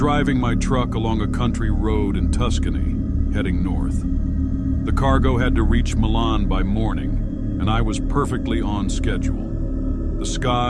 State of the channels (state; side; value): identical; both; correlation 1.00